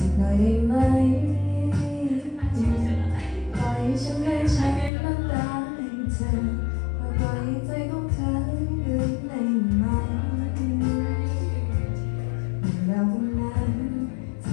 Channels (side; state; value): right; drops out; at 4.9 s